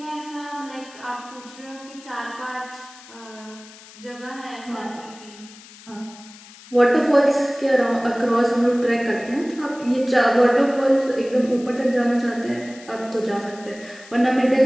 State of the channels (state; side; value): noise; left; hiss, 20 dB below the sound